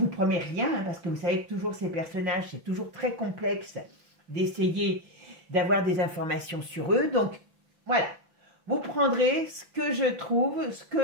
promets rien, hein, parce que vous savez que toujours ces personnages, c'est toujours très complexe d'essayer d'avoir des informations sur eux. Donc, voilà. Vous prendrez ce que je trouve, ce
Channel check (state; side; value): late; left; 5.9 ms